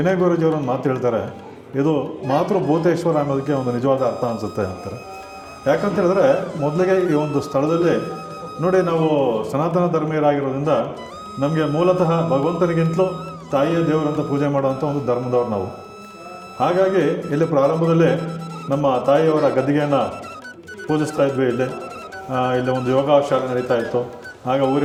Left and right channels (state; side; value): identical; both; correlation 1.00